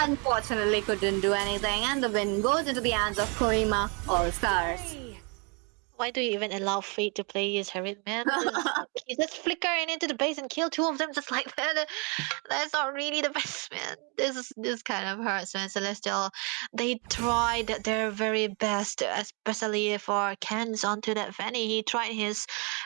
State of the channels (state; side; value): quieter; left; 33.6 dB